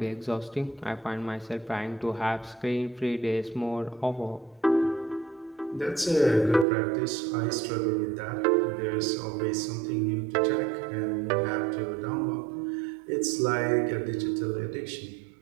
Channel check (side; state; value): left; drops out; at 6.7 s